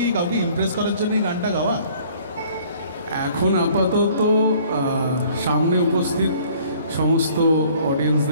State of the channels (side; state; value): both; inverted; correlation -0.55